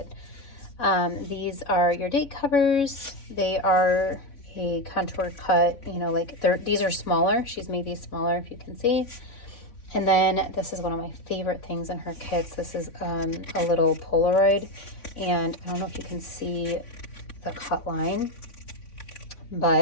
These are your date covers. They are a contour cut, you know, like these are smaller. She's made these smaller, if you can see. And then this is one of my favorite things in her kits. This is a little Polaroid, and I don't know if you can see the cut line,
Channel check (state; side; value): late; right; 3.6 ms